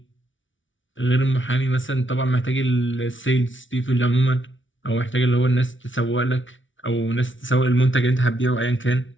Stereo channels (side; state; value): right; late; 0.56 ms